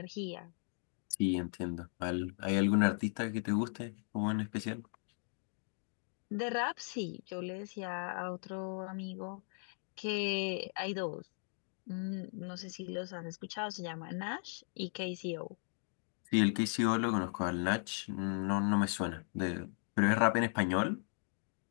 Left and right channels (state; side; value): silent; right; 53 dB below the other